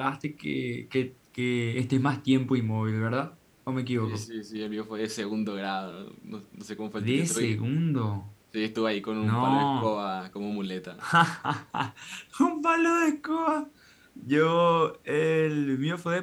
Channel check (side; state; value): both; identical; correlation 1.00